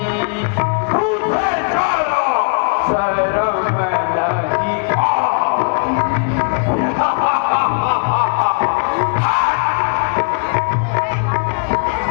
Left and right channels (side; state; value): right; quieter; 38.7 dB